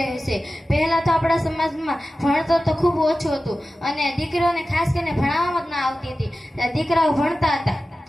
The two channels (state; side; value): normal; both; correlation 0.94